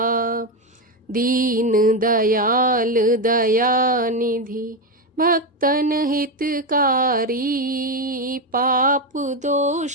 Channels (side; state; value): both; normal; correlation 0.11